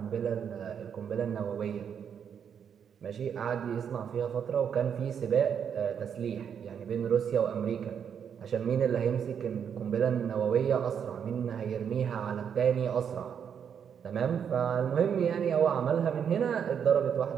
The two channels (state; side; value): quieter; left; 7.8 dB